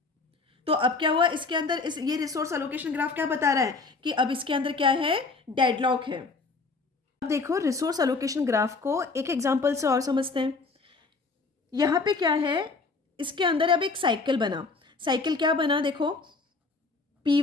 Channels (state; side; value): quieter; right; 4.0 dB